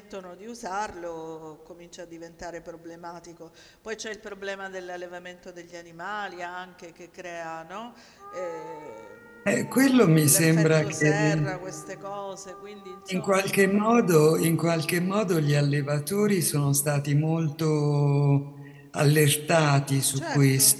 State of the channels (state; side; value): identical; both; correlation 1.00